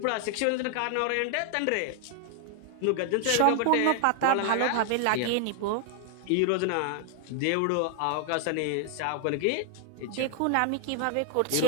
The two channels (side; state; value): both; different; correlation 0.00